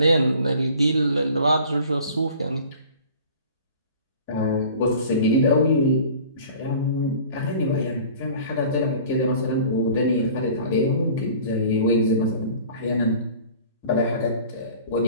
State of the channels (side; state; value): both; inverted; correlation -0.45